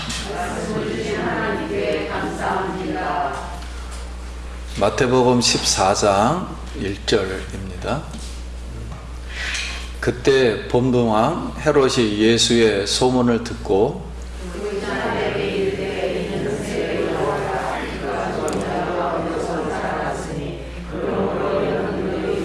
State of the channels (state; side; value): identical; both; correlation 1.00